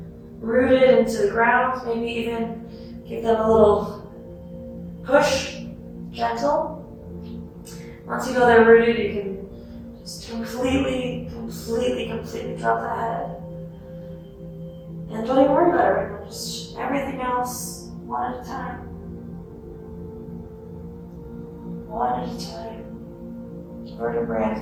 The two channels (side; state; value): both; identical; correlation 1.00